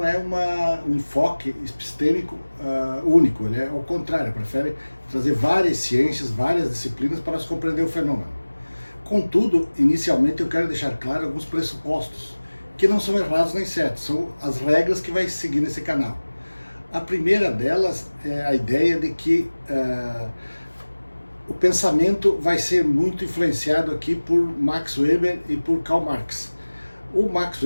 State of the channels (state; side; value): inverted; both; correlation -1.00